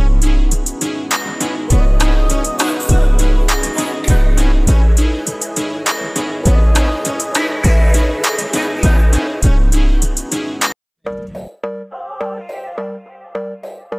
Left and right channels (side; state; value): both; identical; correlation 1.00